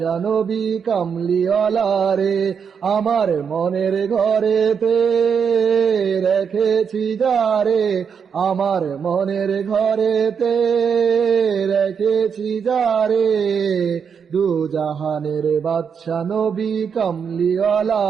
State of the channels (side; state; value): left; quieter; 6.7 dB